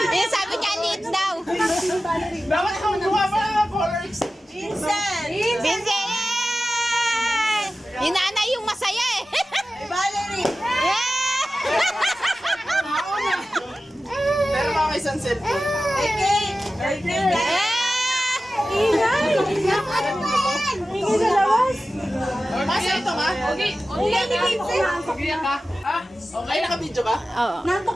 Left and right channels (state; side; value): normal; both; correlation 0.95